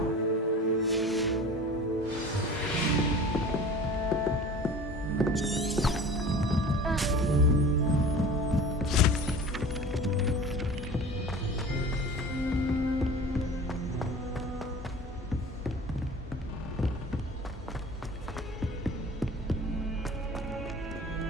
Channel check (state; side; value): normal; both; correlation 0.40